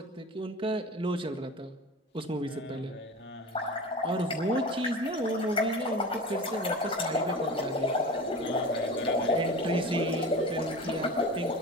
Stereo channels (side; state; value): both; normal; correlation 0.33